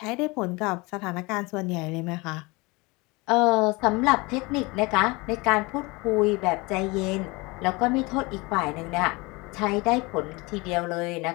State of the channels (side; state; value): right; quieter; 25.1 dB